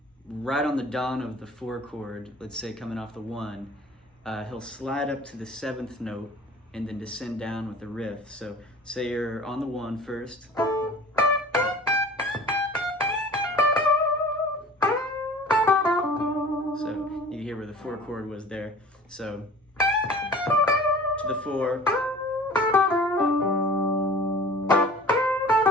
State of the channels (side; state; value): both; normal; correlation 0.44